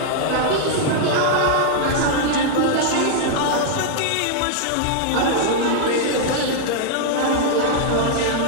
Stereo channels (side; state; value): both; different; correlation -0.01